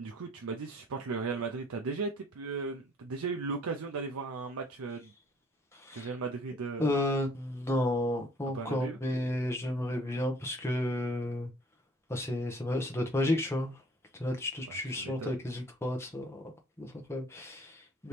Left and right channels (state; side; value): normal; both; correlation 0.58